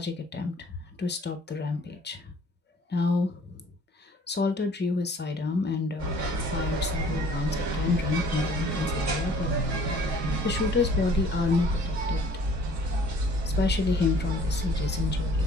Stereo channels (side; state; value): both; normal; correlation 0.54